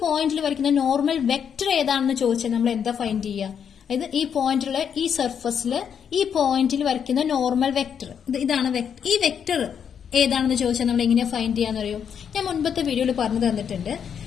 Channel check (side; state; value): right; quieter; 7.7 dB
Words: പോയിന്റിൽ വരയ്ക്കുന്ന നോർമൽ വെക്ടർ ഏതാണെന്ന് ചോദിച്ചാൽ നമ്മൾ എന്താ ഫൈൻഡ് ചെയ്യുക? അതായത് ഈ പോയിന്റിലെ ഈ സർഫസിൽ ഈ പോയിന്റിൽ വരയ്ക്കുന്ന നോർമൽ വെക്ടർ ഇതാണ്. ഈ വെക്ടർ ഏതാണെന്ന് ചോദിച്ചാൽ നമ്മൾ എങ്ങനെയാ ഫൈൻഡ് ചെയ്യാന്ന് അറിയോ? ഞാൻ മുൻപത്തെ വീഡിയോയിൽ പറഞ്ഞു തന്നിട്ടുണ്ട്.